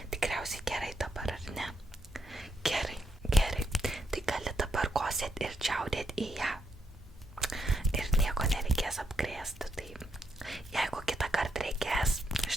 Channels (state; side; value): normal; both; correlation 0.79